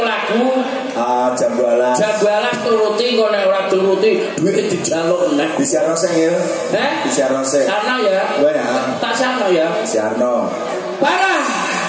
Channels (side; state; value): both; identical; correlation 1.00